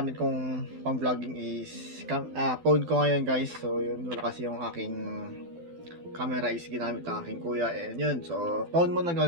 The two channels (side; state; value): left; late; 12 ms